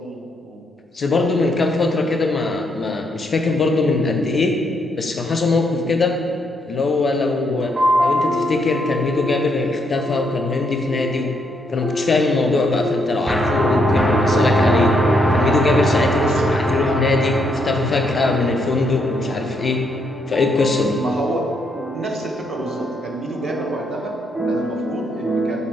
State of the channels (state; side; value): normal; both; correlation 0.75